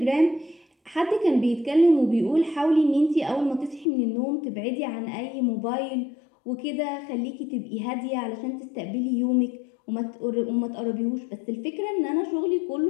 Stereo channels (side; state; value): right; drops out; at 3.9 s